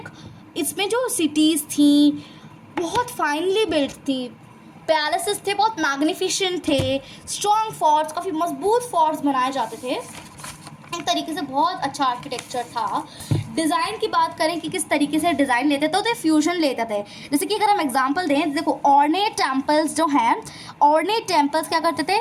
इसमें जो सिटीज़ थी बहुत फाइनली बिल्ट थी, पैलेसेस थे बहुत मैग्निफिसेंट थे, स्ट्रॉन्ग फोर्ट्स, काफ़ी मजबूत फोर्ट्स बनाए जाते थे। एक तरीके से बहुत अच्छा आर्किटेक्चर था। डिज़ाइन की बात करें कि किस तरीके से डिज़ाइन लेते थे, तो फ्यूजन लेते थे। जैसे कि अगर हम एग्जांपल दें, देखो ऑर्नेट टेम्पल्स जो हैं, ऑर्नेट टेम्पल्स क्या करते थे,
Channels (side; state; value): both; identical; correlation 1.00